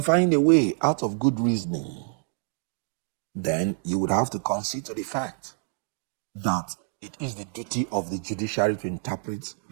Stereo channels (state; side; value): silent; left; 60 dB below the other